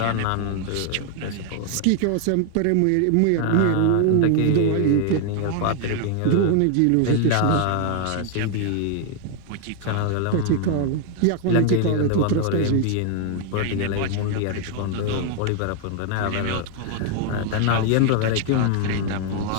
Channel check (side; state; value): both; different; correlation 0.00